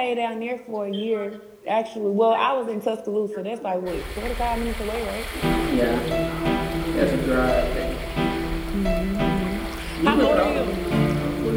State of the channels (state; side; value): identical; both; correlation 1.00